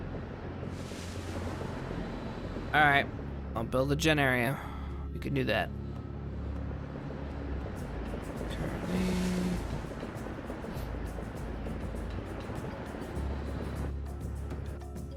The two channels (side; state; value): both; identical; correlation 1.00